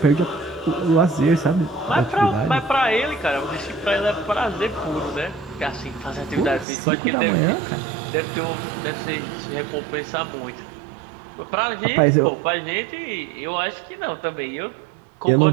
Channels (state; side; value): drops out; left; at 6.7 s